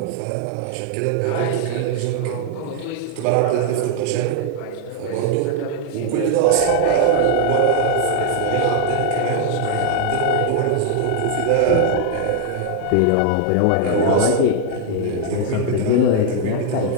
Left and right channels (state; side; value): different; both; correlation 0.00